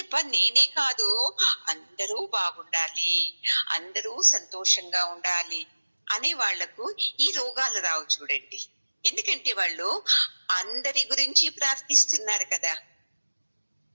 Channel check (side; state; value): both; inverted; correlation -1.00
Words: నేనే కాదు అందరూ బాగుండాలి, అందరూ సంతోషంగా ఉండాలి అనే వాళ్లకు ఈ రోగాలు రావు చూడండి. ఎందుకంటే వాళ్ళు అందరి గురించి ప్రార్థిస్తున్నారు కదా.